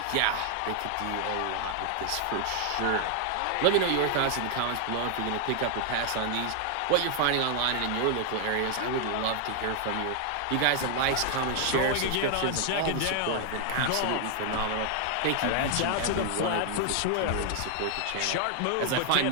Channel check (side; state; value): both; different; correlation 0.00